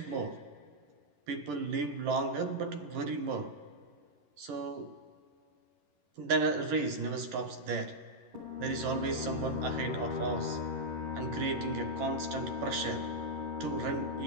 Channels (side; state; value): left; late; 11 ms